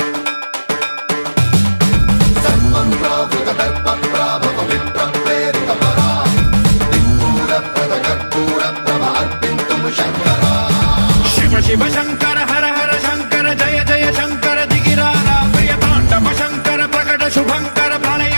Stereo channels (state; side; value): inverted; both; correlation -1.00